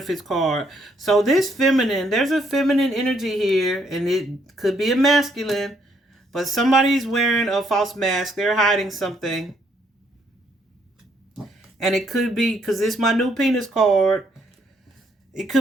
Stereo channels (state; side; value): normal; both; correlation 0.70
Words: card. So this feminine, there's a feminine energy here, and it could be a masculine, but somebody's wearing a false mask. They're hiding something. And it could be, because it's my new penis card, it